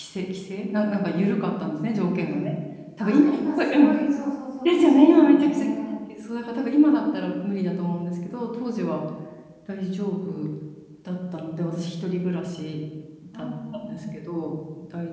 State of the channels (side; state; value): both; identical; correlation 1.00